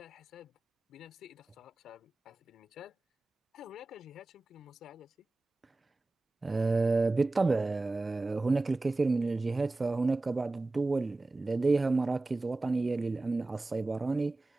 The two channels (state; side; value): quieter; left; 3.1 dB